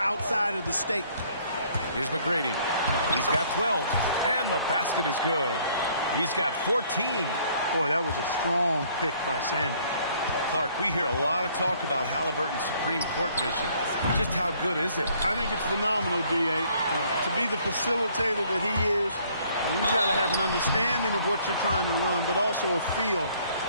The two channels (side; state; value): both; inverted; correlation -0.61